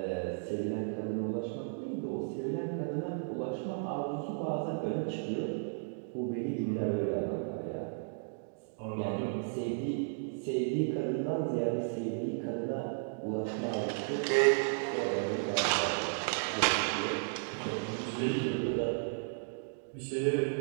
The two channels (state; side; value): silent; left; digital silence